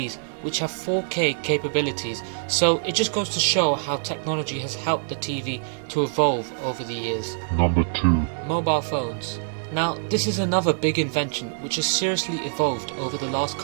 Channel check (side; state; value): left; silent; digital silence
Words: which have 4K capabilities, so it just goes to show how technology has helped the TV to evolve over the years. Number 2. Mobile phones. Now, this is another big invention which has seriously evolved over the last